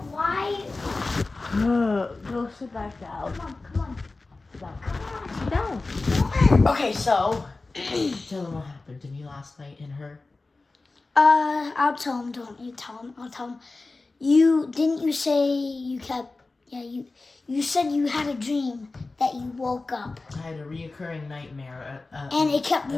why? Go sit back down. Come on. Sit down. Okay, so tell them what happened to me last night and her. I'll tell him. Don't you tell him? I'll tell him. You say you kept? Yeah, you said you had a dream that you woke up I had a reoccurring nightmare. and it kept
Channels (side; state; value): right; quieter; 3.5 dB